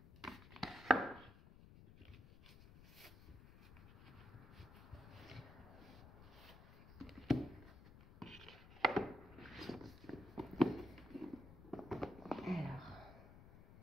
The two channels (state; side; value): noise; left; rumble, 17 dB below the sound